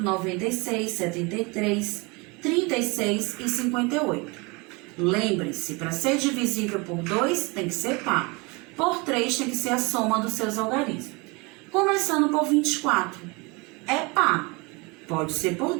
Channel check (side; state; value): left; quieter; 27.3 dB